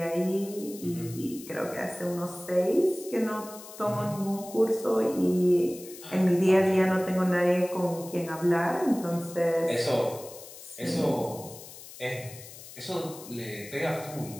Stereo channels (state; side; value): noise; left; hiss, 16 dB below the sound